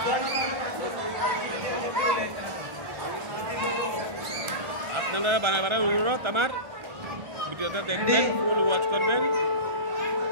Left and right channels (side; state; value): left; late; 1.3 ms